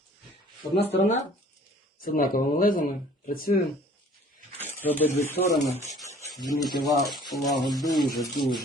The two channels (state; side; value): normal; both; correlation 0.52